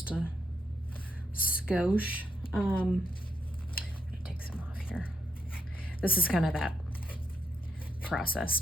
a skosh. I'm gonna take some off here. This is kind of that process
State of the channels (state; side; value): normal; both; correlation 0.78